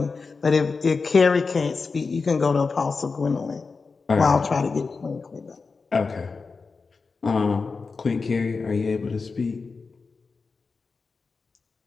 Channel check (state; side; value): quieter; right; 4.5 dB